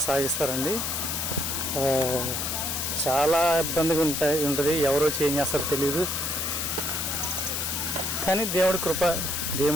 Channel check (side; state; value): left; noise; hiss, 1 dB below the sound